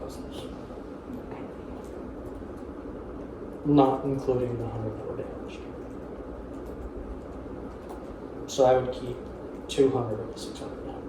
not including the 100 that were damaged. So I would keep 200 of the 600.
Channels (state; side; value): identical; both; correlation 1.00